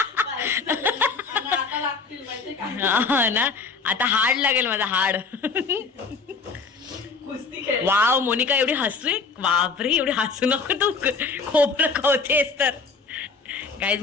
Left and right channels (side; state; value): right; quieter; 4.7 dB